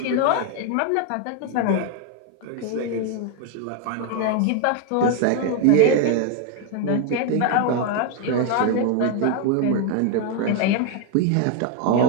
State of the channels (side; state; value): both; different; correlation 0.01